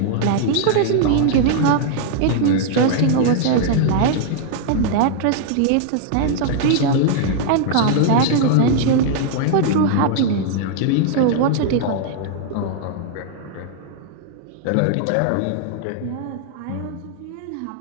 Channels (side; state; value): both; different; correlation -0.01